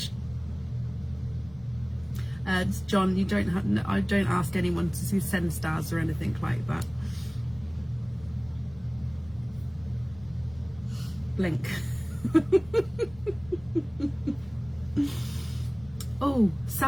John, you don't have. I don't ask anyone to send stars or anything like that. Blink. Oh,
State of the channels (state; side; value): noise; left; rumble, 21 dB below the sound